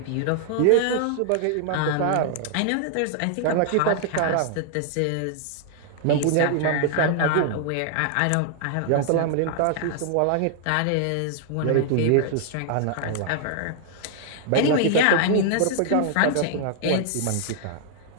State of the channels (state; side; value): different; both; correlation 0.00